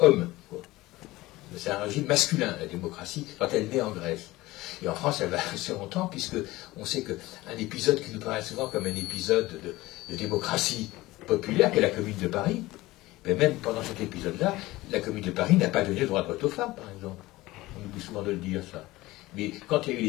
c'est un régime masculin, la démocratie, quand elle naît en Grèce. Et en France, elle va rester longtemps, puisque on sait qu'un épisode qui nous paraît souvent comme un épisode de démocratie populaire, qui est la Commune de Paris, mais même pendant cet épisode-là, la Commune de Paris n'a pas donné le droit de vote aux femmes, par exemple. On oublie souvent de le dire, ça. Mais quand il y a eu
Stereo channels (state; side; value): quieter; right; 18.8 dB